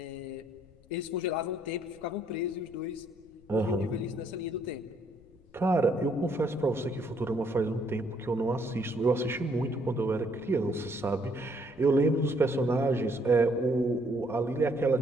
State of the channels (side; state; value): left; noise; rumble, 26 dB below the sound